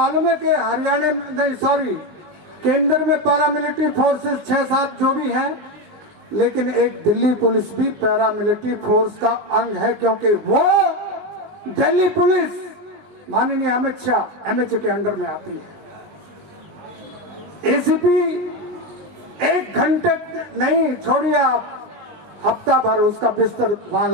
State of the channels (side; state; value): left; late; 19 ms